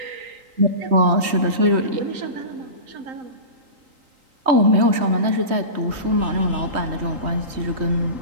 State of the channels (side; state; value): left; late; 3.8 ms